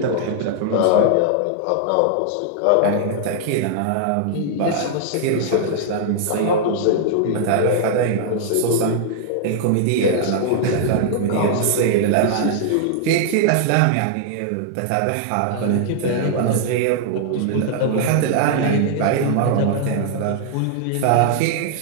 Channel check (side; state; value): both; different; correlation -0.01